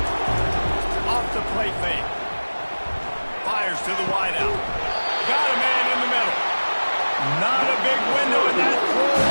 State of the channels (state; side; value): inverted; both; correlation -1.00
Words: Off the play fake. Fires to the wideout. Got a man in the middle. Not a big window, and that throw